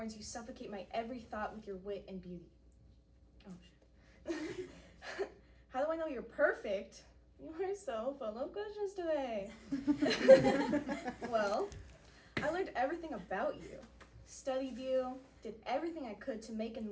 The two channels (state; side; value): identical; both; correlation 1.00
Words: you suffocate my every thought with your wit and beauty. Oh shit. How do I know you're perfect? You are so full of questions today. Well, I learned everything about you, studied you, did everything I could to make and